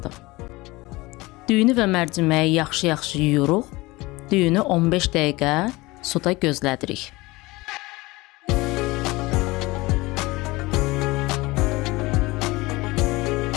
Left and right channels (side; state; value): right; quieter; 21.7 dB